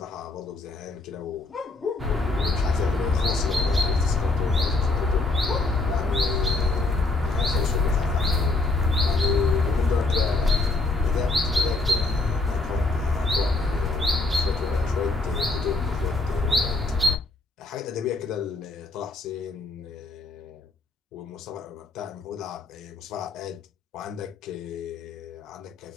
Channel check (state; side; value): quieter; right; 3.3 dB